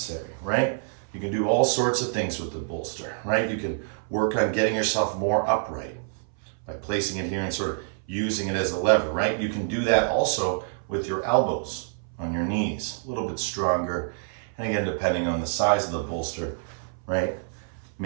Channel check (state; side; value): silent; left; 60 dB below the other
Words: right? You can do all sorts of things with the bolster, right? You can work on getting yourself more upright by placing it here and sort of using it as a lever, right? You can do that also with your elbows on your knees, a little bit stronger. And again, depending on the size of the bolster, right?